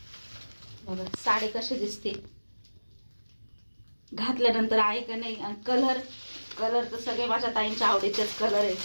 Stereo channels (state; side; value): inverted; both; correlation -1.00